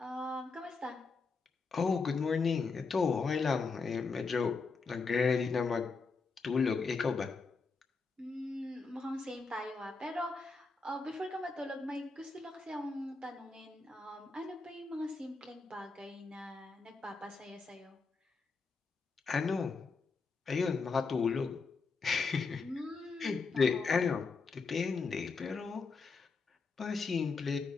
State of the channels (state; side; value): quieter; right; 4.5 dB